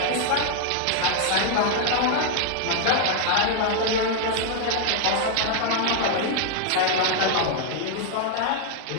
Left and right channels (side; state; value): both; different; correlation 0.00